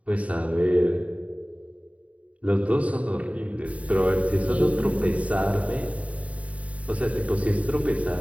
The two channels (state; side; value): late; left; 0.067 ms